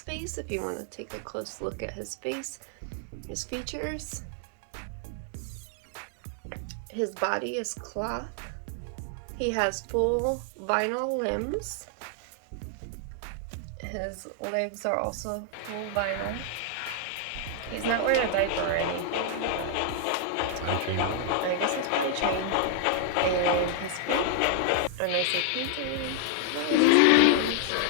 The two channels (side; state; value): both; different; correlation 0.00